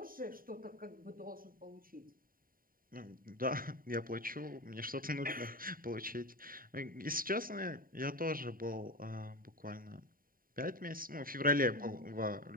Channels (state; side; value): late; left; 0.41 ms